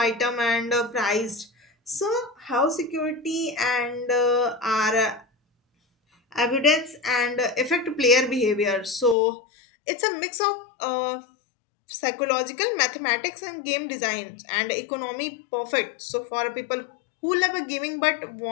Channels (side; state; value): right; drops out; at 9.2 s